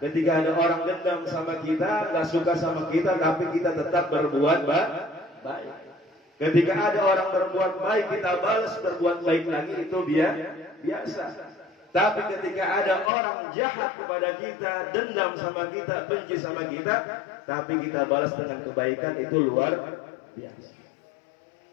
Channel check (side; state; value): right; drops out; at 13.1 s